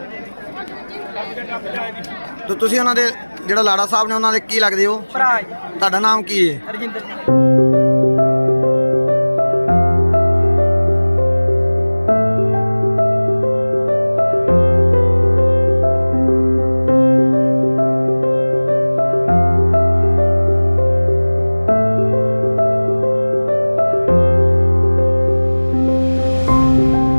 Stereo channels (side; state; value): both; inverted; correlation -1.00